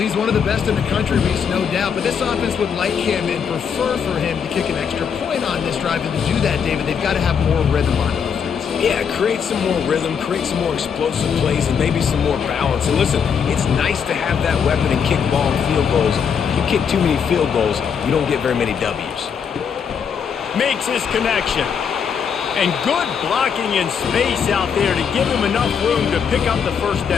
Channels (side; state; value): right; quieter; 7.0 dB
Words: one of the best in the country, Reese, no doubt. But this offense would like him and prefer for him to kick an extra point on this drive. And to do that, David, they've got to have more rhythm on offense. Yeah, create some more rhythm, create some more explosive plays, and maybe some more balance. And listen, it's nice to have that weapon and kick long field goals. If you kick too many field goals, you don't get very many W's. Makes his connection. And good blocking in space out there to give him enough room to pick up the first